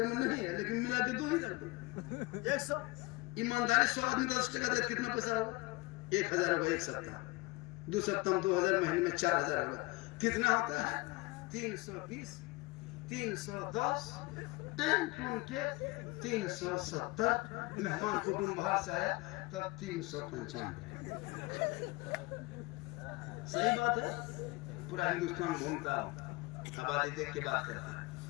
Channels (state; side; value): quieter; right; 23.5 dB